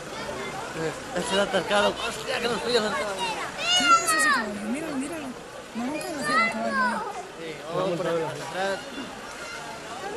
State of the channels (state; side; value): identical; both; correlation 1.00